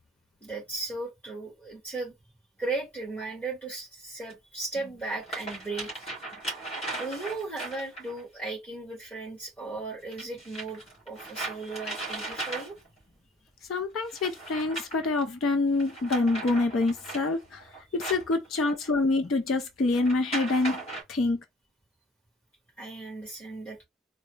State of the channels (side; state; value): both; normal; correlation 0.55